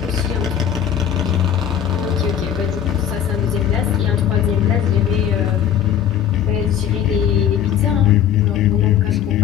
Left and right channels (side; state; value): right; quieter; 9.6 dB